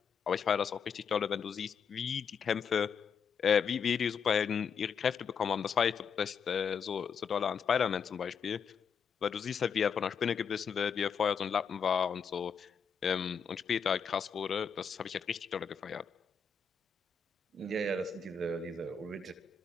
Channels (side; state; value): right; quieter; 6.2 dB